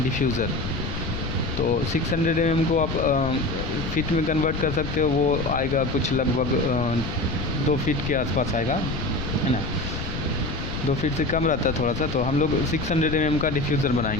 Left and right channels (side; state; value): left; noise; rumble, 5 dB below the sound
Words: तो 600 mm को आप फीट में कन्वर्ट कर सकते हो, वो आएगा कुछ लगभग 2 फीट के आसपास आएगा, है ना। 2 फीट से कम रहता है थोड़ा सा। तो हम लोग 600 mm का डिफ्यूज़र